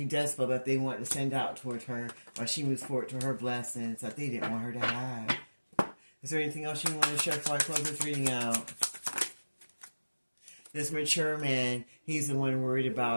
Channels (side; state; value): both; inverted; correlation -1.00